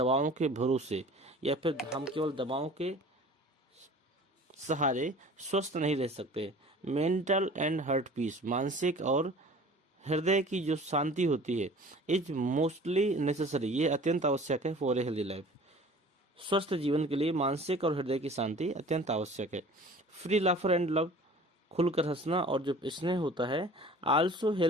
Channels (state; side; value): normal; both; correlation 0.45